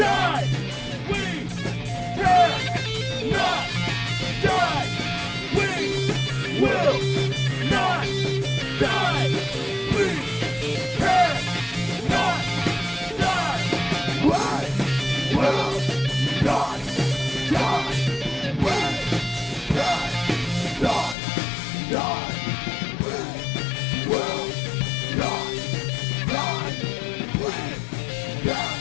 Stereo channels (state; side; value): drops out; right; at 21.2 s